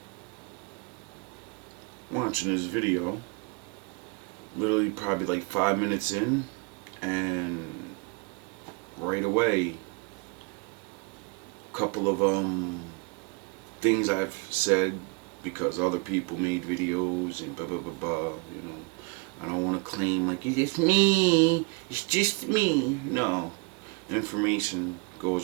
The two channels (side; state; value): left; quieter; 28.9 dB